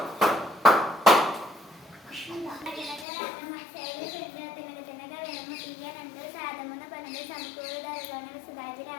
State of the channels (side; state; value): right; drops out; at 3.1 s